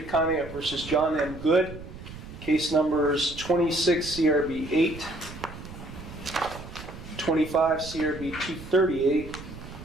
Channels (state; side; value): noise; right; rumble, 13 dB below the sound